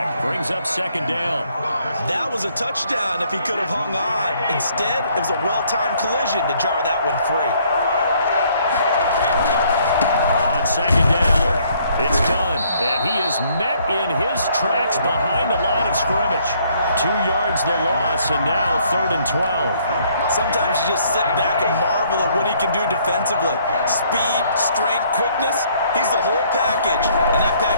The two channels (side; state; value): both; inverted; correlation -0.65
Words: Brings up 2nd down. That was a touchdown if he could have hung on. Instead, it was a well-timed collision to jar that one free. On 2nd down, it's done. And he is met in his tracks behind the line of scrimmage. 2 yards the loss, and now 3rd and 12. Sometimes you just sit back and marvel at what he can do defensively. Speed, strength, quickness, he's the whole package. And that